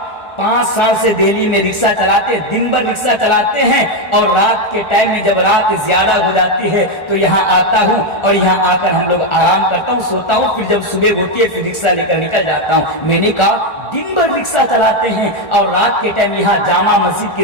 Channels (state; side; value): late; right; 1.4 ms